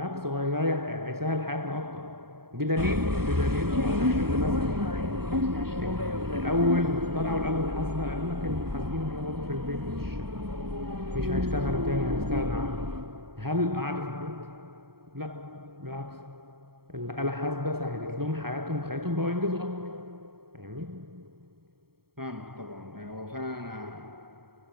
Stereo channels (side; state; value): left; late; 0.95 ms